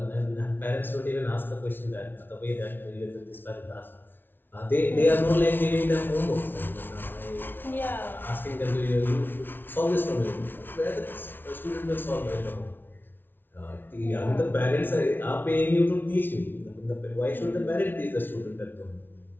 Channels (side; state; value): right; late; 0.099 ms